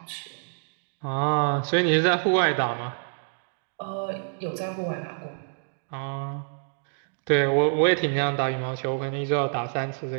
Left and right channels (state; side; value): silent; left; digital silence